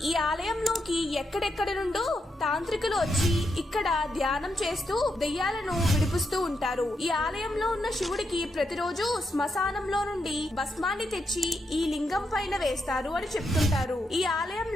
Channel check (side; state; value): both; normal; correlation 0.82